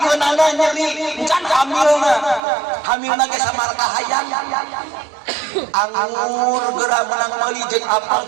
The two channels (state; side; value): drops out; left; at 2.4 s